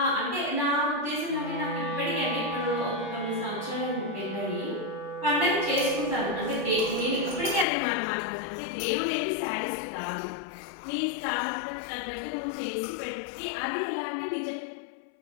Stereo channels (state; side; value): drops out; right; at 7.7 s